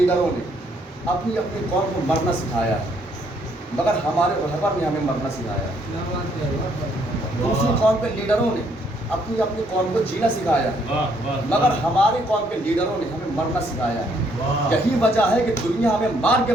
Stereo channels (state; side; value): normal; both; correlation 0.69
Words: نے اپنی اپنی قوم کو مرنا سکھایا ہے، مگر ہمارے رہبر نے ہمیں مرنا سکھایا ہے۔ دوسری قوم کے لیڈروں نے اپنی اپنی قوم کو جینا سکھایا ہے، مگر ہماری قوم کے لیڈروں نے ہمیں مرنا سکھایا ہے۔ یہی وجہ ہے کہ دنیا ہمیں مار کے